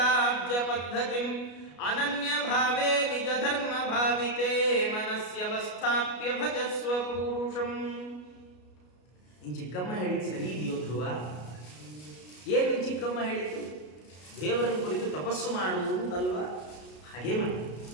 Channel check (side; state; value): right; late; 33 ms